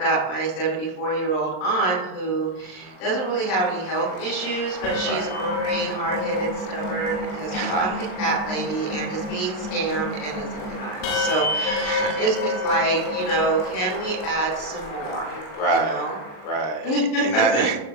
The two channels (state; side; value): late; right; 39 ms